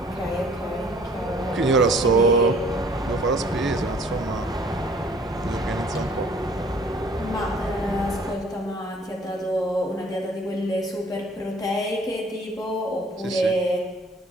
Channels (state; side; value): normal; both; correlation 0.55